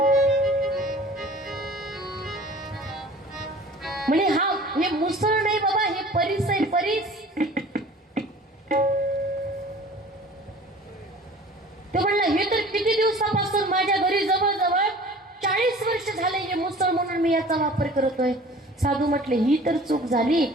म्हणजे हे मुसळ नाही बाबा, हे परीस आहे, परीस. ते म्हणलं हे तर किती दिवसापासून माझ्या घरी जवळजवळ 40 वर्ष झाले हे मुसळ म्हणून मी याचा वापर करतोय. साधू म्हटले ही तर चूक झाली,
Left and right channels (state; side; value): normal; both; correlation 0.45